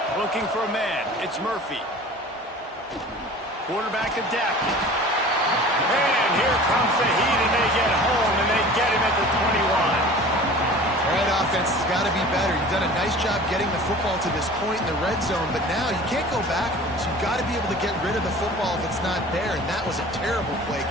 Looking for a man. It's Murphy. Quarterback adapted. And here comes the heat, and they get home, and they get him at the 21. Right, offense has got to be better. You've done a nice job getting the football to this point in the red zone, but now you can't go backwards. You've got to be able to get rid of the football if it's not there, and that was a terrible play,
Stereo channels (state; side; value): normal; both; correlation 0.42